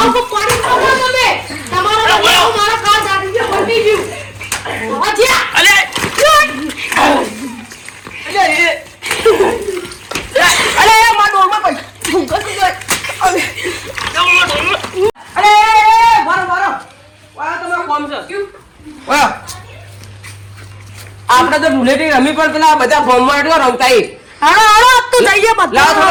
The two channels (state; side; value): identical; both; correlation 1.00